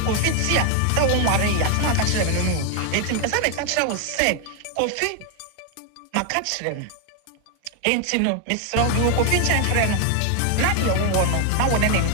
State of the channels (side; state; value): both; different; correlation 0.01